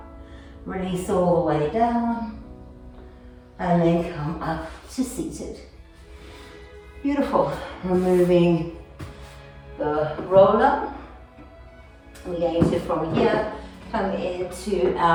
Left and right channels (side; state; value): both; identical; correlation 1.00